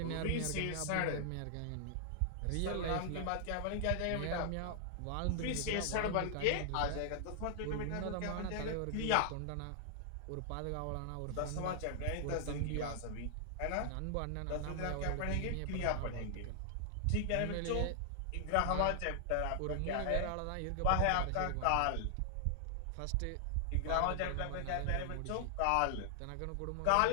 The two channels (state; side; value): different; both; correlation -0.01